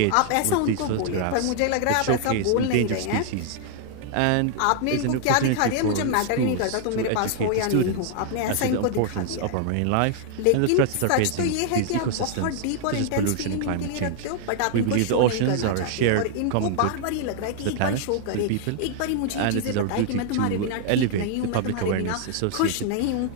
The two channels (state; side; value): different; both; correlation 0.00